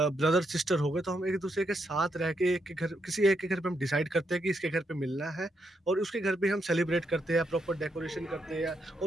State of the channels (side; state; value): both; normal; correlation 0.80